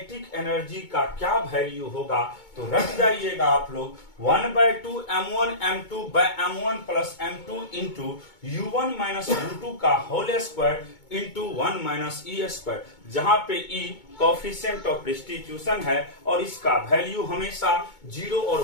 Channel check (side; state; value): right; late; 2.2 ms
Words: एनर्जी का क्या वैल्यू होगा। तो रख जाइएगा आप लोग 1/2 M1 M2 by M1 plus M2 into U1 minus U2 का whole square into 1 minus E square, जहां पे ई कोफिशिएंट ऑफ रिस्टिट्यूशन है और इसका वैल्यू हमेशा 0